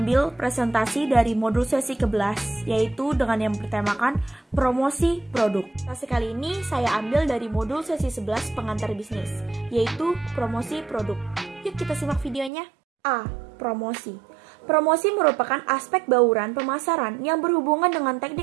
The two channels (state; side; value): drops out; left; at 12.5 s